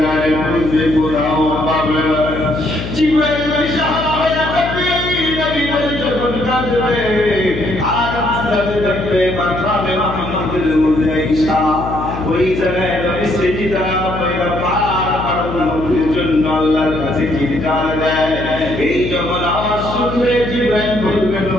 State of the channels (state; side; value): noise; left; hum, 7 dB below the sound